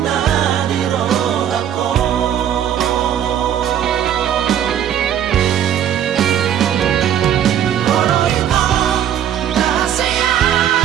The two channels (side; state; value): left; quieter; 10.0 dB